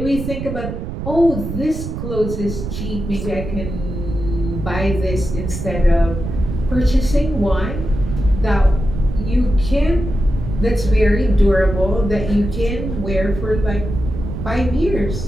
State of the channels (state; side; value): noise; right; rumble, 6 dB below the sound